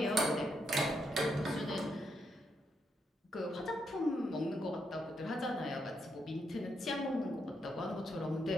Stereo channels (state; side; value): normal; both; correlation 0.79